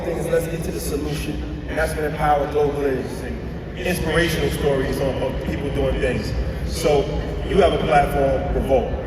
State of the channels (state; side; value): identical; both; correlation 1.00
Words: thing is let's get to the solution. And that's what Empower Global is. Inspirational stories of people doing things. So you have a platform, Revolt,